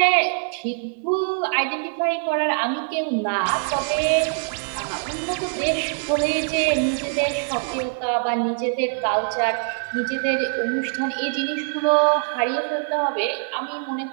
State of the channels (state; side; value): silent; left; 63 dB below the other